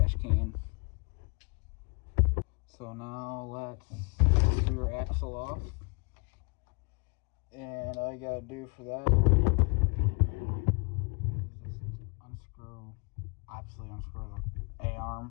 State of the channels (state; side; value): quieter; right; 31.1 dB